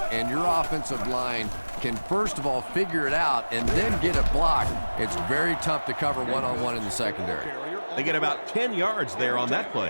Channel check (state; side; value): inverted; both; correlation -1.00